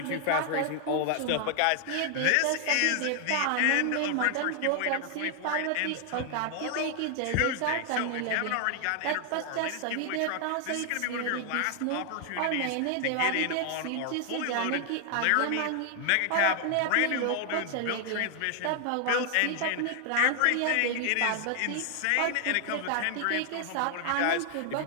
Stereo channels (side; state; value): both; different; correlation 0.00